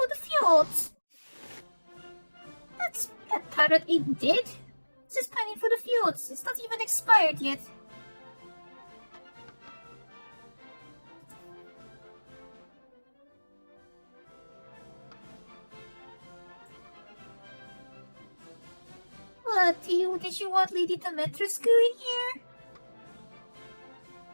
the fjords. That's that parrot even did. It's just pining for the fjords. It's not even expired yet. What, did you want Lady Demetrescu in here?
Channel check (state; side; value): inverted; both; correlation -1.00